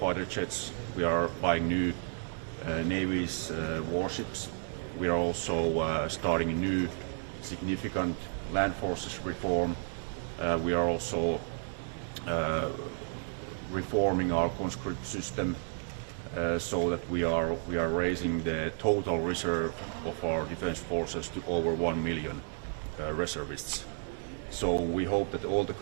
jets. We are buying new Navy's warships. We are also starting a new significant land forces reform. We are also reforming our conscript system so that we are raising the total reserve of our defense forces to over 1 million reservists. So we hope that all the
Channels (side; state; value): left; silent; 56 dB below the other